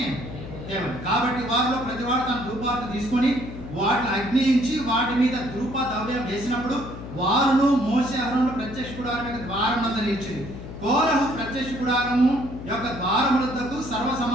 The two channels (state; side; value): noise; left; hum, 11 dB below the sound